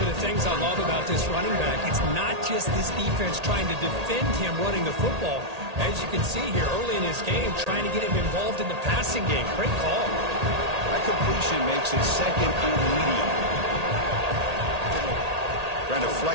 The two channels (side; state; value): left; late; 1.8 ms